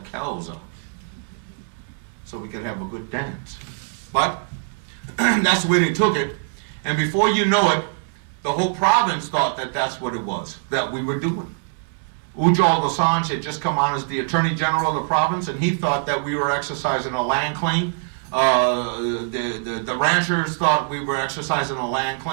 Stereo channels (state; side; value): silent; left; 59 dB below the other